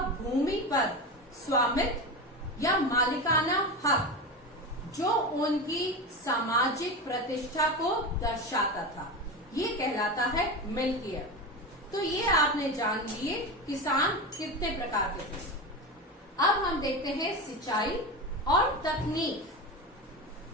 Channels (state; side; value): normal; both; correlation 0.22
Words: भूमि पर स्वामित्व या मालिकाना हक, जो उनकी सामाजिक प्रतिष्ठा को दर्शाता था, ये कहलाता है मिल्कियत। तो ये आपने जान लिए किसान कितने प्रकार के थे। अब हम देखते हैं सिंचाई और तकनीक।